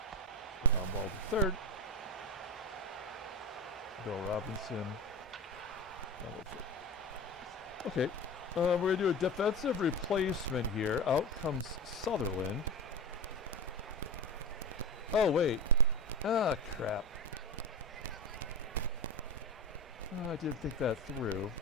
Ground ball to third. Bill Robinson. Double third. Okay. We're going to do a defensive replacement here. Out comes Sutherland. Oh, wait. Ah, crap. Oh, I didn't think that through.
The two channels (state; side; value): normal; both; correlation 0.22